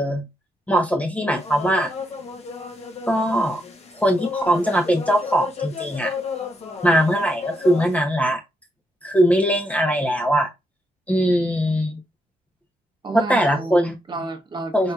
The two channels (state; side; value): normal; both; correlation 0.80